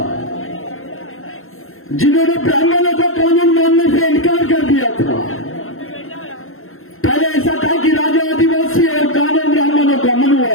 जिन्होंने ब्राह्मणों का कानून मानने से इनकार कर दिया था। पहले ऐसा था कि राजा आदिवासी और कानून ब्राह्मणों का,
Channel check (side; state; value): right; late; 0.61 ms